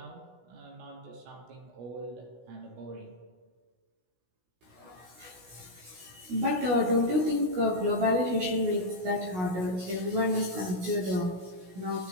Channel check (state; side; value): late; left; 16 ms